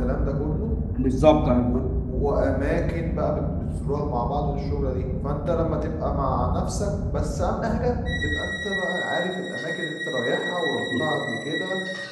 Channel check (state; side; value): identical; both; correlation 1.00